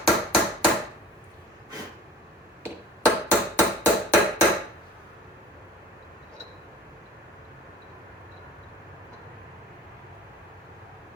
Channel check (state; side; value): normal; both; correlation 0.44